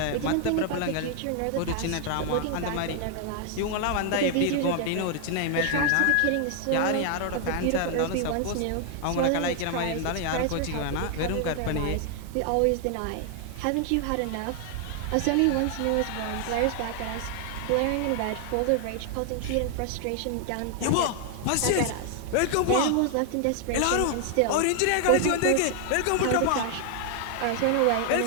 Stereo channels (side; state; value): both; different; correlation 0.00